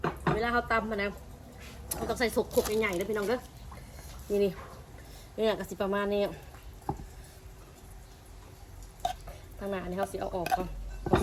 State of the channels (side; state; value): both; identical; correlation 1.00